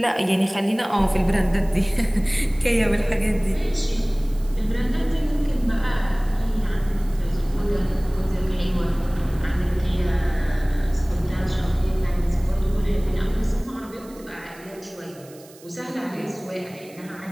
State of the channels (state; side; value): noise; right; hiss, 23 dB below the sound